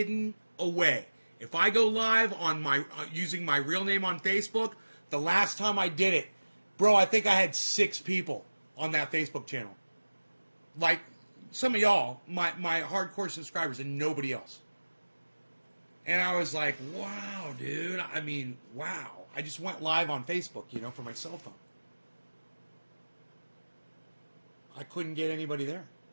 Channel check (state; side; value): inverted; both; correlation -1.00